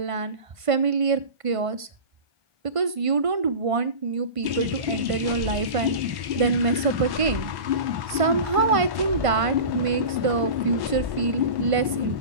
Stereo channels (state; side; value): late; left; 1.5 ms